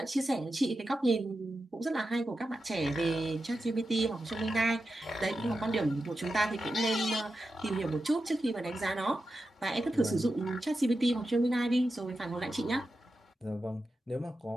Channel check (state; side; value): normal; both; correlation 0.90